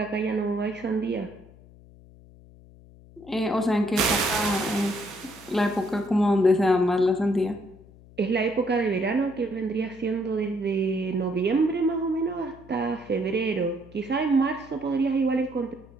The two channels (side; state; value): left; noise; hum, 23 dB below the sound